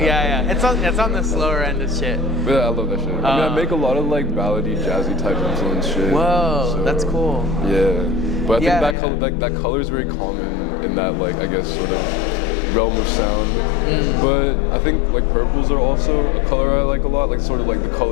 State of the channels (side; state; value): right; drops out; at 9.0 s